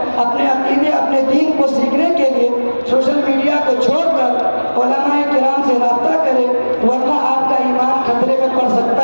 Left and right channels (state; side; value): inverted; both; correlation -1.00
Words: اپنے عقیدے، اپنے دین کو سیکھنے کے لیے سوشل میڈیا کو چھوڑ کر علماء کرام سے رابطہ کریں، ورنہ آپ کا ایمان خطرے میں پڑ